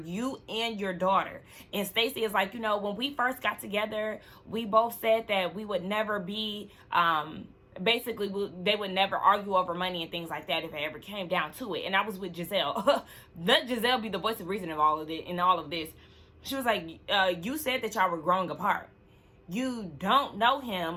and your daughter. And Stacey is like, you know, when we first got together, we both said that we would never be... basically, they would never argue over money and things like that if it ever came down to it. And I was with Giselle. Let Giselle be the voice of reason of all of it, in all of this. She was like, you said that y'all were growing apart. You don't know him.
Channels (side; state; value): both; identical; correlation 1.00